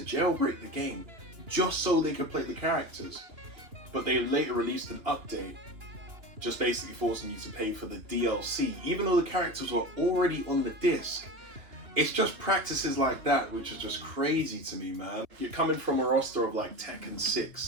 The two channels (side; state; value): left; late; 2.7 ms